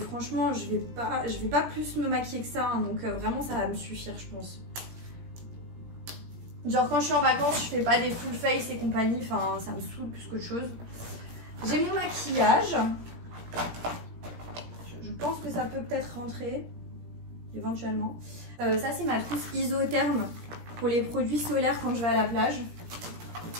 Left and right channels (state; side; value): late; left; 17 ms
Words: je vais pas plus me maquiller que ça, hein, donc vraiment ça va me suffire, je pense. Genre quand je suis en vacances, je fais pas des full face et compagnie, enfin ça me saoule plus qu'autre chose. J'ai mon maquillage. Je pense que ça peut peut-être rentrer, éventuellement. Ça c'est ma trousse isotherme pour les produits solaires quand je vais à la plage.